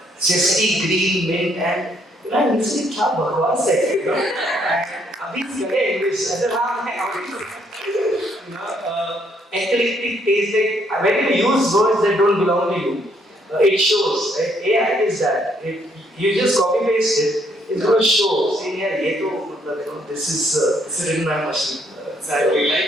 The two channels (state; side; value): normal; both; correlation 0.70